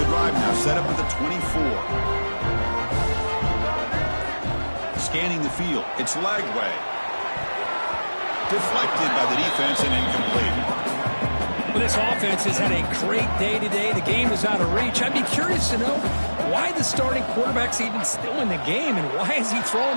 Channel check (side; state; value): both; inverted; correlation -1.00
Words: drive now, set up at the 24. Scanning the field. It's Lagway. Deflected by the defense and incomplete. Well, this offense has had a great day today. The game is out of reach. I'd be curious to know why the starting quarterback's even still in the game and why is he throwing